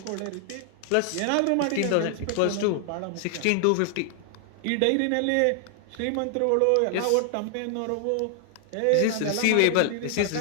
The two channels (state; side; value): different; both; correlation 0.00